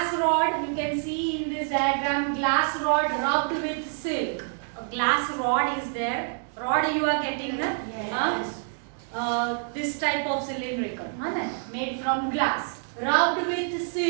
rod, you can see in this diagram, glass rod rubbed with silk. A glass rod is there. Rod you are getting, na? Yes. This type of cylindrical, made from glass, rubbed with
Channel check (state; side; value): silent; left; 60 dB below the other